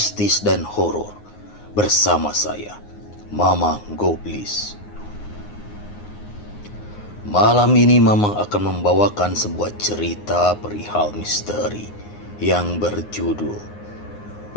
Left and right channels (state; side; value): late; right; 9.6 ms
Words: dan horor bersama saya, Mamang Goblis. Malam ini Mamang akan membawakan sebuah cerita perihal misteri yang berjudul